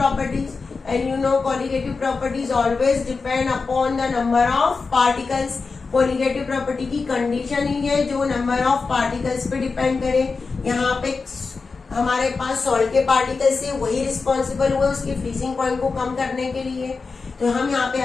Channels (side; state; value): right; quieter; 4.5 dB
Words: and you know colligative properties always depend upon the number of particles. colligative property की कंडीशन ही है जो नंबर ऑफ पार्टिकल्स पे डिपेंड करे। यहाँ पे हमारे पास सॉल्ट के पार्टिकल्स से वही रिस्पॉन्सिबल हुए उसके फ्रीजिंग पॉइंट को कम करने के लिए। तो हम यहाँ पे